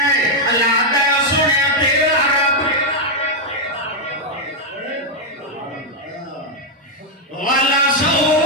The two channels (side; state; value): both; normal; correlation 0.00